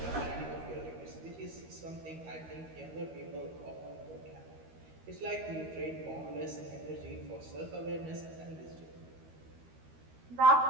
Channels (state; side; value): late; left; 13 ms